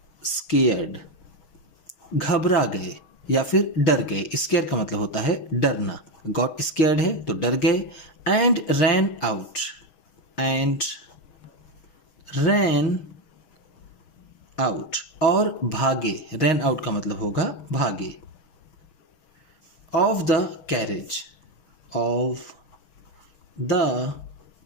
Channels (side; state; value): right; late; 6.3 ms